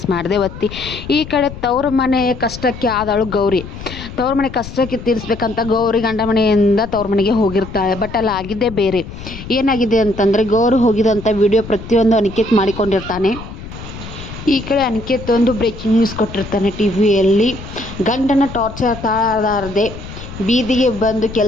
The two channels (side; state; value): left; noise; rumble, 12 dB below the sound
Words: ಮಾಡದೆ ಒತ್ತಿ. ಈ ಕಡೆ ತವ್ರ ಮನೆ ಕಷ್ಟಕ್ಕೆ ಆದಳು ಗೌರಿ. ತವ್ರ ಮನೆ ಕಷ್ಟಕ್ಕೆ ತೀರಿಸ್ಬೇಕಂತ ಗೌರಿ ಗಂಡ ಮನೆಯಿಂದ ತವ್ರ ಮನೆಗೆ ಹೋಗಿರ್ತಾಳೆ. ಬಟ್ ಅಲ್ಲಿ ಆಗಿದ್ದೇ ಬೇರೆ. ಏನಾಗಿದೆ ಅಂತಂದರೆ, ಗೌರಿ ಹೋಗಿದಂಥ ವಿಡಿಯೋ ಪ್ರತಿಯೊಂದು ಅನಿಕೇತ್ ಮಾಡಿಕೊಂಡಿರ್ತಾನೆ. ಈ ಕಡೆ ಅನಿಕೇತ್ ಒಂದು ಬ್ರೇಕಿಂಗ್ ನ್ಯೂಸ್ ಕೊಟ್ಟಿರ್ತಾನೆ ಟಿವಿಯಲ್ಲಿ. ಗಂಡನ ಟಾರ್ಚರ್ ತಾಳಲಾರದೆ ಬೀದಿಗೆ ಬಂದು